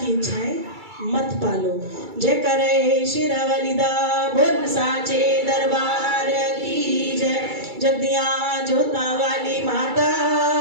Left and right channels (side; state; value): left; late; 2.3 ms